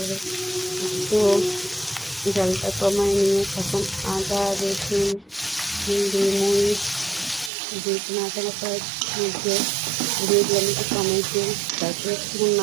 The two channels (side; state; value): left; drops out; at 7.5 s